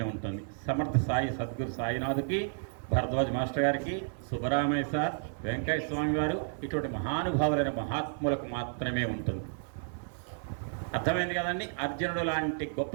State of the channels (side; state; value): left; silent; 57 dB below the other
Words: ఉంటుంది. సమర్థ సాయి సద్గురు సాయినాథుకి, భరద్వాజ్ మాస్టర్ గారికి, సుబ్బరామయ్య సార్, వెంకయ్య స్వామి వారు, ఇటువంటి మహానుభావులైన మహాత్ములకు మాత్రమే ఉంటుంది. అర్థమైంది కదండి? అర్జునుడు లాంటి గొప్ప